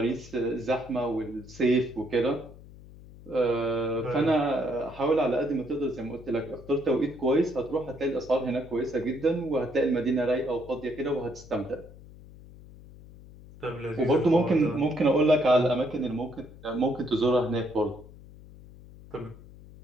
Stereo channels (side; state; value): left; noise; hum, 19 dB below the sound